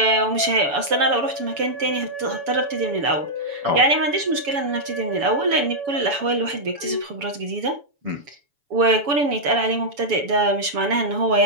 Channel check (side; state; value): left; late; 7.0 ms